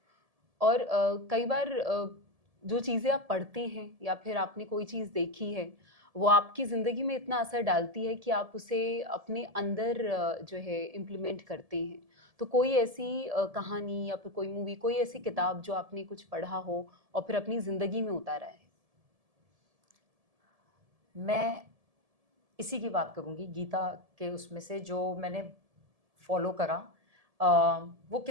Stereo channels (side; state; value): left; late; 1.7 ms